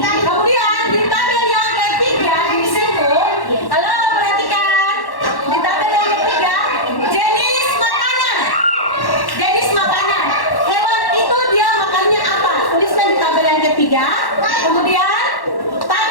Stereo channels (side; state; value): right; late; 1.1 ms